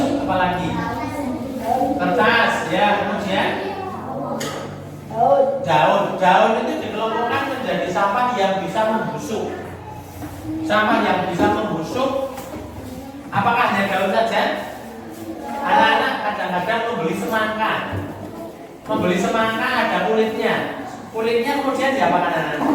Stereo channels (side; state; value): both; identical; correlation 1.00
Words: apa lagi? Kertas, ya, kemudian daun. Daun itu dikelompokkan menjadi sampah yang bisa membusuk. Sampah yang bisa membusuk. Apakah hanya daun saja? Anak-anak kadang-kadang membeli semangka. Membeli semangka ada kulitnya. Kulitnya kemudian diapakan anak-anak?